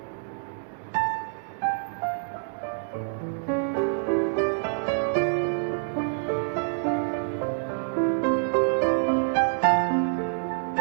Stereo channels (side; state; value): left; silent; 60 dB below the other